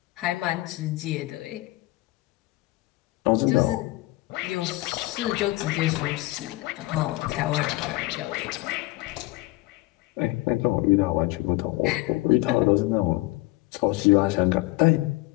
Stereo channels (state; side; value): quieter; right; 20.2 dB